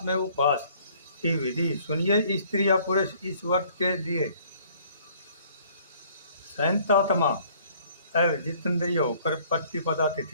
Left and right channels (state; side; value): inverted; both; correlation -0.59